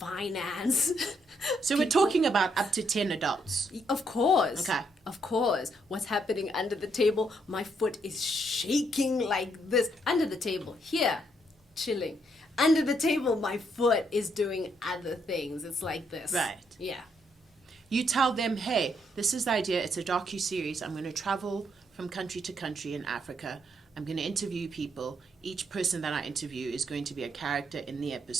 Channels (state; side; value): normal; both; correlation 0.74